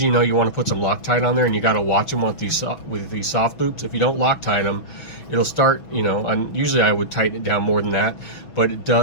you know, you want to put some Loctite on there, and you got to watch them with these soft loops. If you don't Loctite them, it'll start, you know, and usually I would tighten it down more than that, but it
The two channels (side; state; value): right; late; 6.1 ms